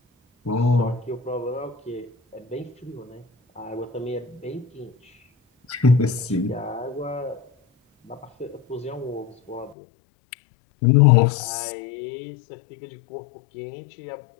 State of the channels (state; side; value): drops out; right; at 9.8 s